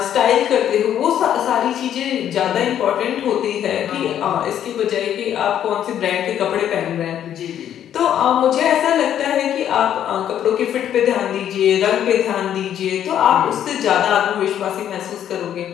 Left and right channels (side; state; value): right; quieter; 10.3 dB